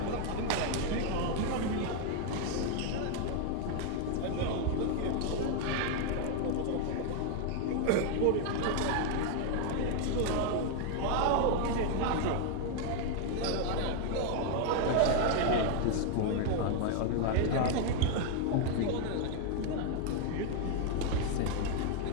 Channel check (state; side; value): different; both; correlation 0.00